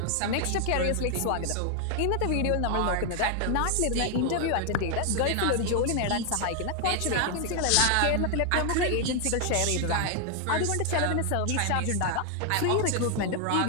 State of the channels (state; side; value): different; both; correlation 0.00